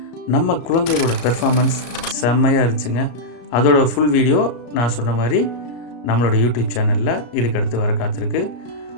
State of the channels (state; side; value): late; right; 34 ms